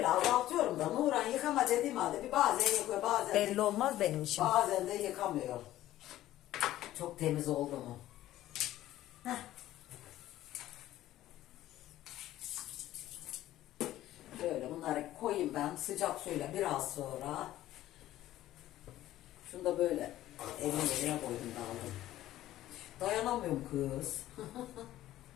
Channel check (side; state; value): right; quieter; 14.2 dB